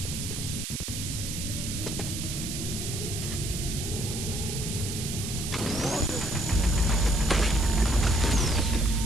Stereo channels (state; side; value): noise; right; hiss, 5 dB below the sound